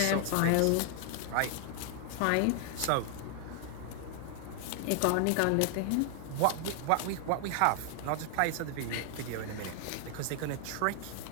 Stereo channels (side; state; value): both; different; correlation 0.00